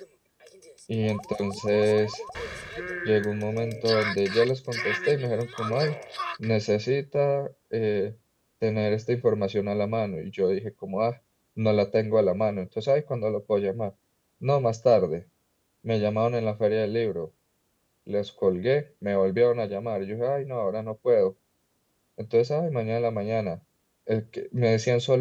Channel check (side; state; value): both; identical; correlation 1.00